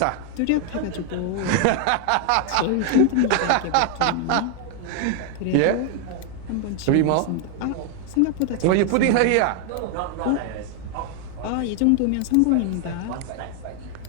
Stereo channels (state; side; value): different; both; correlation 0.00